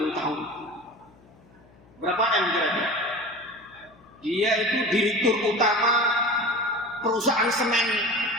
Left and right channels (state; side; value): noise; left; hum, 27 dB below the sound